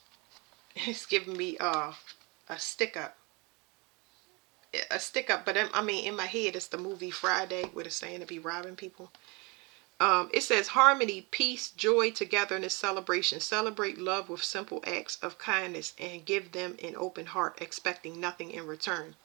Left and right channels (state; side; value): quieter; left; 28.4 dB